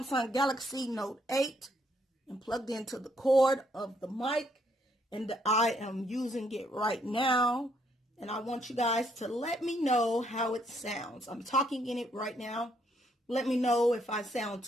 Galaxy Note 8 and plugged into the cord of the mic, and I am using it right now, and I want you guys to let me know how it sounds. I'm talking in it right now. Let me know if I sound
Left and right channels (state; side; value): normal; both; correlation 0.71